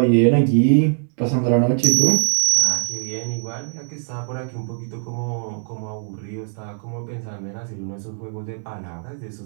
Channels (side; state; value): left; silent; digital silence